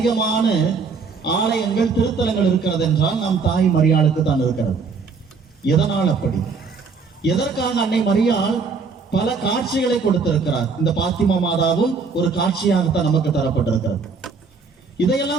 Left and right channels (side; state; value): left; quieter; 4.9 dB